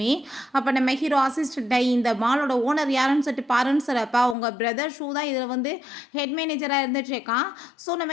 அப்போ நம்ம ஹீரோ அசிஸ்டண்ட்டை இந்த மாலோட ஓனர் யாருன்னு சொல்லிட்டு பாருன்னு சொல்லப்பா உங்கள் பிரதர் ஷூ தான் இதில் வந்து ஹெட் மேனேஜராக இருந்துட்டு இருக்கான். ஸோ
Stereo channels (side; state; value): right; drops out; at 4.4 s